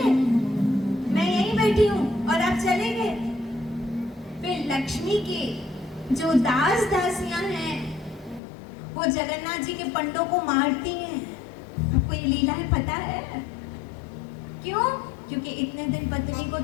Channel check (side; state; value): right; drops out; at 8.4 s